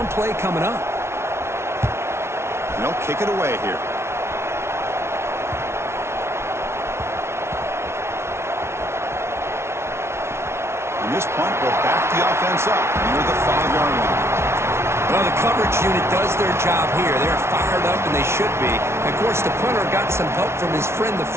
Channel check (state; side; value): late; left; 0.13 ms